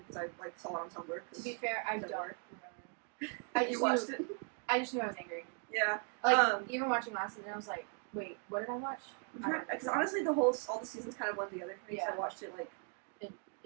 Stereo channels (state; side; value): quieter; left; 36.8 dB